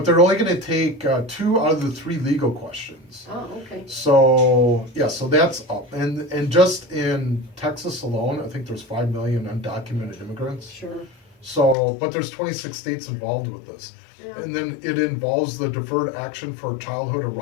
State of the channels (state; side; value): drops out; right; at 11.8 s